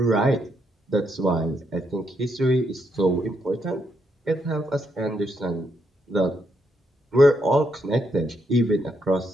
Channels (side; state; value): both; normal; correlation 0.78